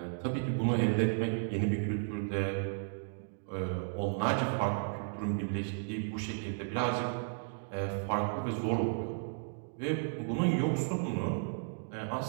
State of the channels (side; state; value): left; silent; digital silence